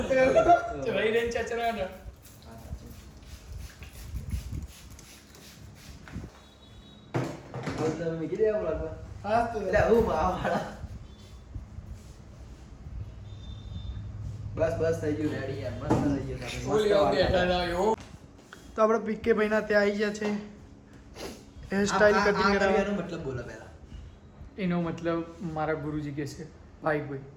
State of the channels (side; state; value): both; identical; correlation 1.00